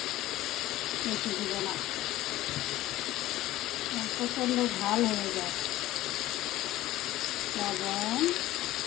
বেশি দিব না, প্রচণ্ড ঝাল হয়ে যায়। লবণ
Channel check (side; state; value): right; quieter; 15.7 dB